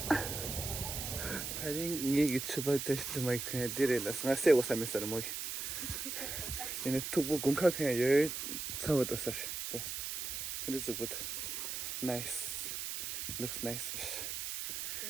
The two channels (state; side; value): noise; right; hiss, 4 dB below the sound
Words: 다른 얘기 추바 테스트 마이크 디레라 상세 오사메서 뭐 얘네 투부 공카 그냥 열 사고도 사실 네 근데 저부터 나이스 looks nice